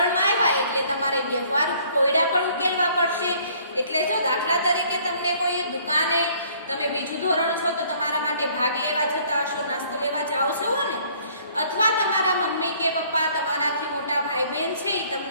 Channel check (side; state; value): both; inverted; correlation -0.59